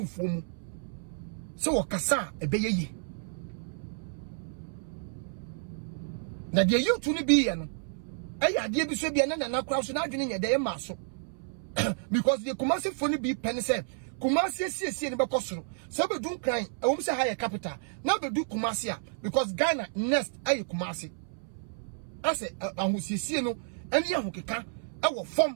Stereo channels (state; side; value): silent; left; 57 dB below the other